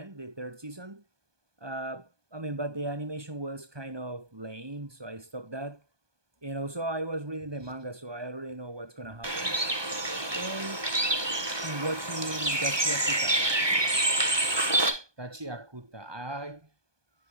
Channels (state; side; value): late; left; 1.2 ms